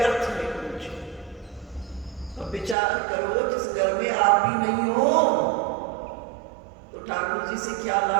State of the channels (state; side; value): drops out; left; at 2.8 s